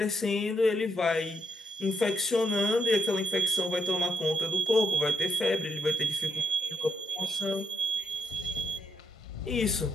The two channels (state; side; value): normal; both; correlation 0.77